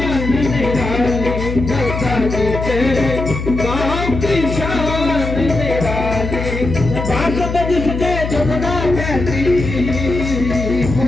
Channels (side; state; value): left; noise; hum, 5 dB below the sound